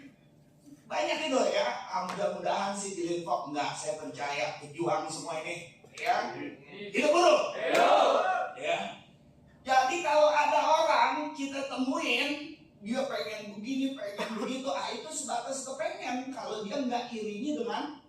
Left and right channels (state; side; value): identical; both; correlation 1.00